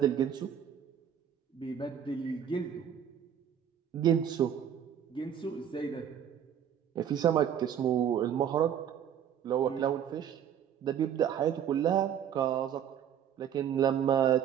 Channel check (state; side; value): quieter; left; 9.1 dB